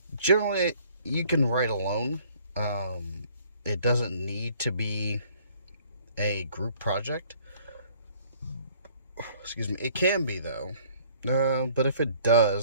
Generally, you can write alone. It doesn't need to be a group project. Excuse me. It can be, though. But if it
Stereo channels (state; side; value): inverted; both; correlation -0.57